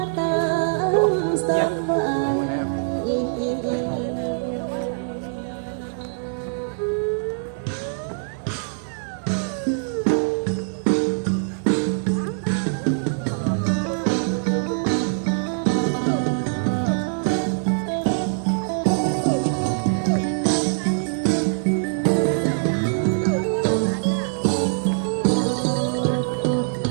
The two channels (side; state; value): left; silent; digital silence